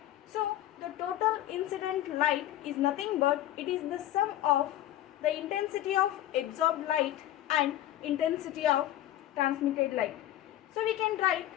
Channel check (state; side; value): quieter; right; 13.5 dB